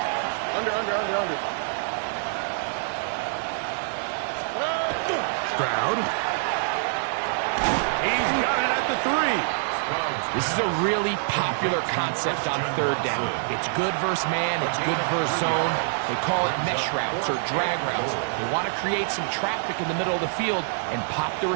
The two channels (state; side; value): silent; left; digital silence